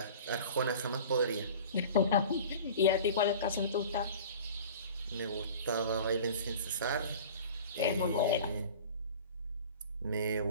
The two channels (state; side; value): inverted; both; correlation -0.40